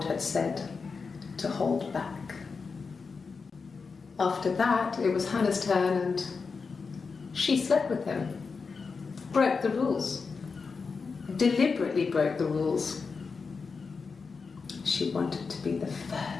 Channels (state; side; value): quieter; right; 4.9 dB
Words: had said to hold back. After that, it was Hannah's turn, and she slept with him. Broke the rules. Deliberately broke the rules. She wanted to be the